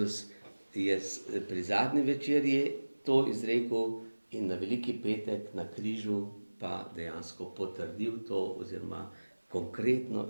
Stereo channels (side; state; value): both; inverted; correlation -1.00